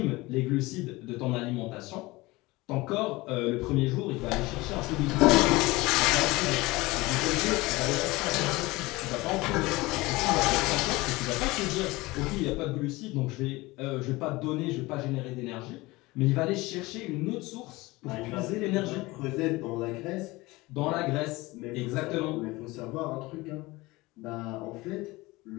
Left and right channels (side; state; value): right; quieter; 21.4 dB